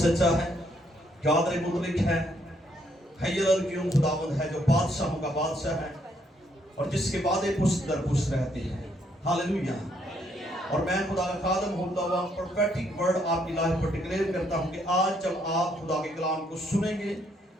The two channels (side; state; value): both; normal; correlation 0.72